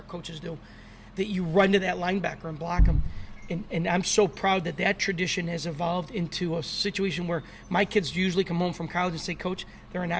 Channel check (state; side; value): identical; both; correlation 1.00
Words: coaches do, that you run to that linebacker and block him. And I'm so proud that tradition has evolved into a situation where my kids usually come home from college and say, Coach, there are